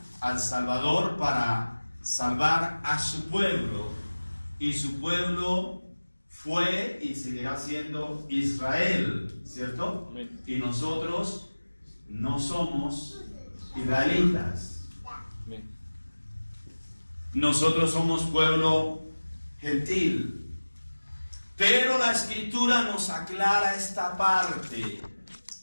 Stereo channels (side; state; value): both; inverted; correlation -1.00